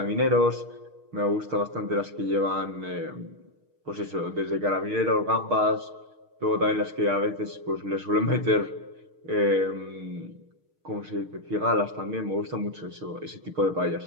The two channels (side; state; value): left; late; 6.5 ms